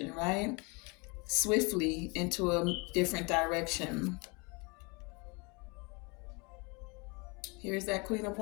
right? Swiftly into a different direction. Here's that Queen of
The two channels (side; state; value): right; quieter; 29.8 dB